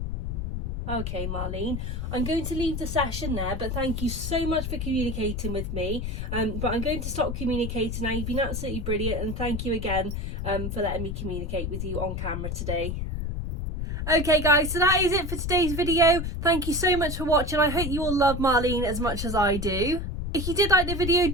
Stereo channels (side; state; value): left; noise; rumble, 3 dB below the sound